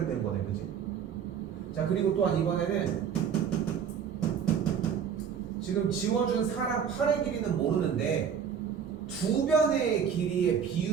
거네, 그치? 자, 그리고 또한 이번에는 지금 지워준 사람 팔의 길이는 모르는데 두 변의 길이의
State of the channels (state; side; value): quieter; left; 7.6 dB